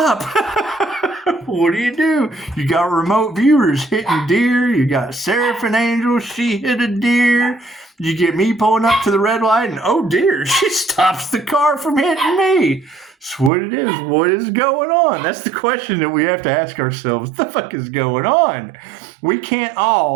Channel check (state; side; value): drops out; left; at 13.5 s